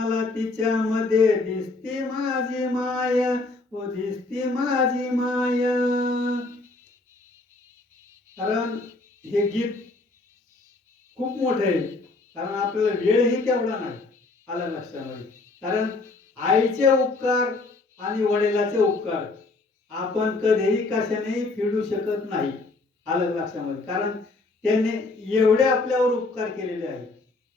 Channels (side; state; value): right; quieter; 3.4 dB